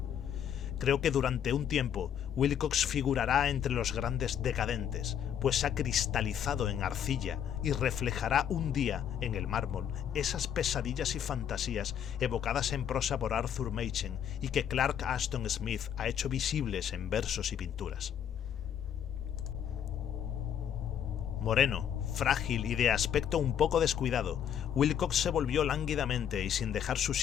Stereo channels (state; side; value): quieter; right; 9.1 dB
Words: Creo que durante un tiempo Wilcox figurará entre los grandes decadentes, pues ha cristalizado en arcilla y reflejará un día en el mármol esas pesadillas y fantasías evocadas en prosa por Arthur Machen y que Clark Ashton Smith ha hecho visibles en versos y pinturas. Moreno, frágil y de aspecto un poco descuidado, Wilcox se volvió lánguidamente y sin dejar su